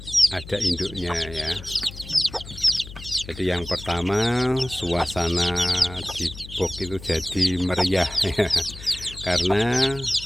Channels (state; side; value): noise; left; hum, 15 dB below the sound